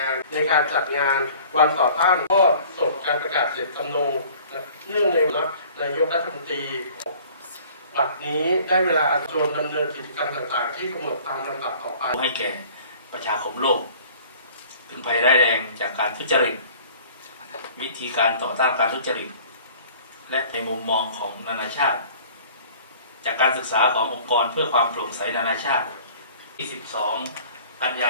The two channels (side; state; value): both; inverted; correlation -0.50